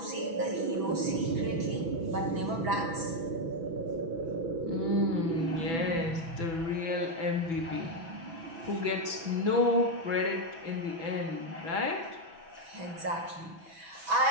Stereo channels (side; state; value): left; late; 6.1 ms